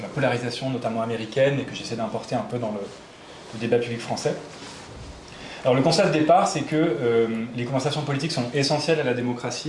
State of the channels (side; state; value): both; identical; correlation 1.00